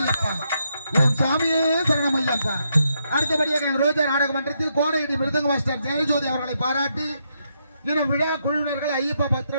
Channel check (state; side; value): inverted; both; correlation -0.79